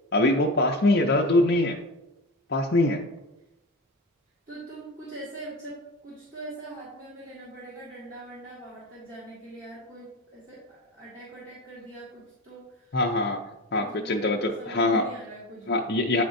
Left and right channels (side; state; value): both; normal; correlation 0.28